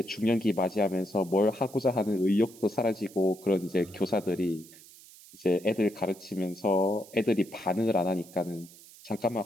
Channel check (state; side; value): noise; right; hiss, 21 dB below the sound